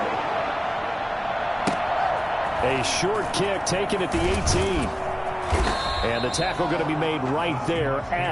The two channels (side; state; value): both; identical; correlation 1.00